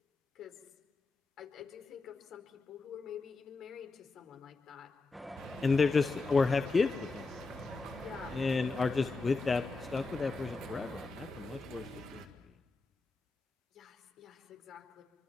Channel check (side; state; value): right; quieter; 3.9 dB